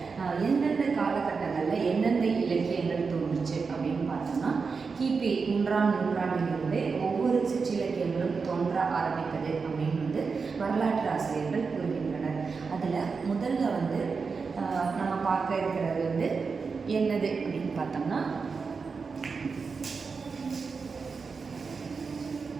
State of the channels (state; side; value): quieter; left; 5.0 dB